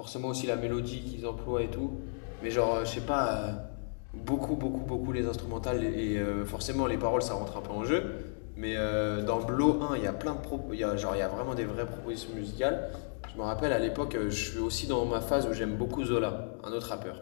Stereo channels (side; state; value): right; silent; digital silence